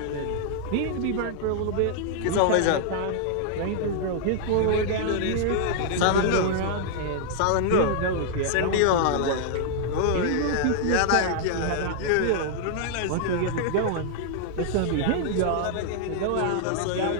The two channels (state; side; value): different; both; correlation -0.01